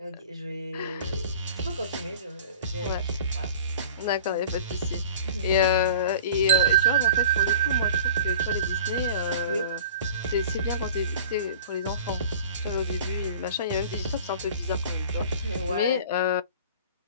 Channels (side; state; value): both; inverted; correlation -0.39